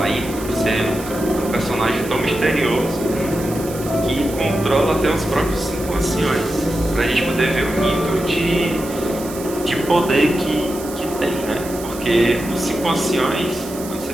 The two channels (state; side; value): noise; right; hiss, 14 dB below the sound